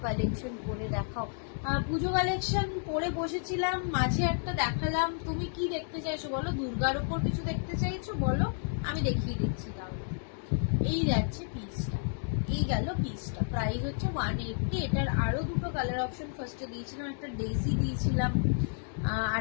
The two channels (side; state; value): right; silent; digital silence